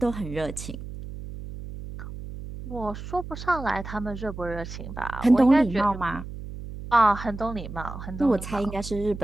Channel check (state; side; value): noise; right; hum, 10 dB below the sound